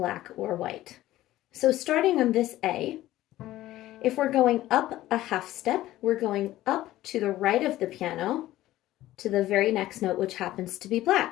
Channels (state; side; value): quieter; right; 15.2 dB